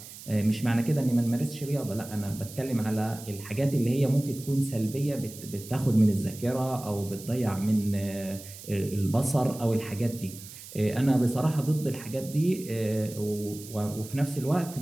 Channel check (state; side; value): noise; right; hiss, 15 dB below the sound